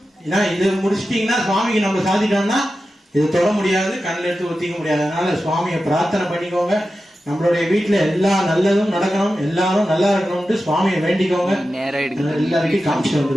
ஏன்னா இது முடிச்சிட்டீங்கன்னா சுவாமிக்கு நம்ம சாதிட்டோம்னா இது தொட முடியாது, கண்ணில் எடுத்து ஒத்திக்க முடியாது. அதனால சுவாமியை பிரார்த்தனை பண்ணிக்கோங்க. நம்மளுடைய வீட்டுல எல்லா நல்லதும் நடக்கணும், எல்லாரும் நல்லா இருக்கணும்னு சுவாமியை வேண்டிக்கோங்க. எல்லாருக்கும் காமிச்சு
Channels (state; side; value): normal; both; correlation 0.92